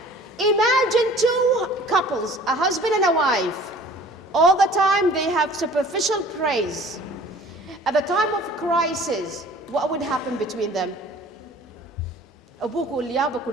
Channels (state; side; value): normal; both; correlation 0.49